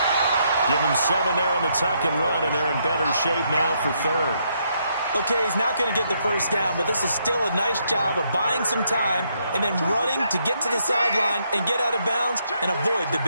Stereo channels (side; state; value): both; inverted; correlation -0.75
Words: Give him 7 there on the tuck and run, and they're in better shape now for 3rd. Okay, he's not going to get the first down, but this is still a nice job of buying some time and then running to get to the sideline and get out of bounds and avoid the